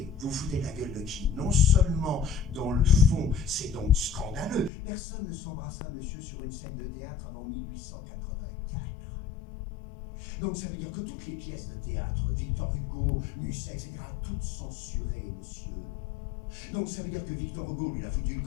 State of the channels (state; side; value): drops out; right; at 4.7 s